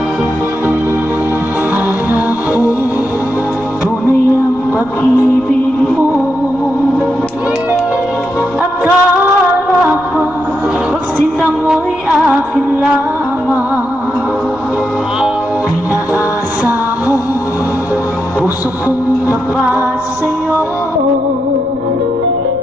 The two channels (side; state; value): right; noise; rumble, 22 dB below the sound